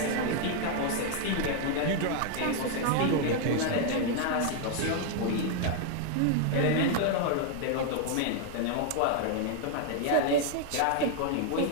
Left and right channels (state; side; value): different; both; correlation 0.00